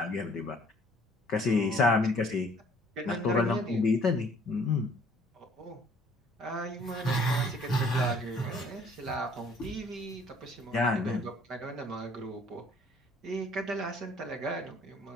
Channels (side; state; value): both; normal; correlation 0.58